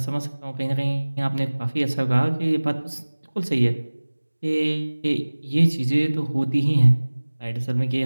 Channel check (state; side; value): inverted; both; correlation -1.00